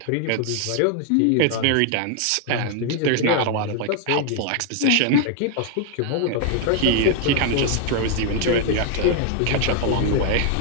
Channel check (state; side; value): different; both; correlation 0.00